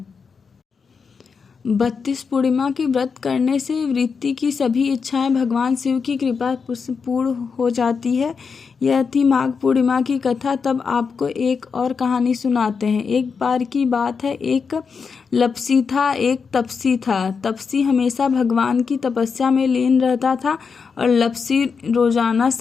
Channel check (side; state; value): right; quieter; 5.6 dB